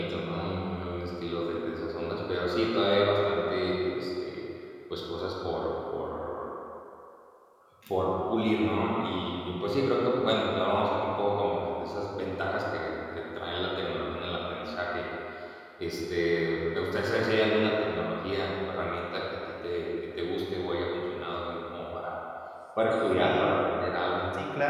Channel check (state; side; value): identical; both; correlation 1.00